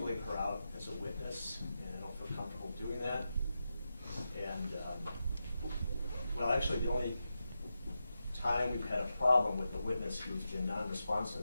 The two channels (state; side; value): inverted; both; correlation -0.89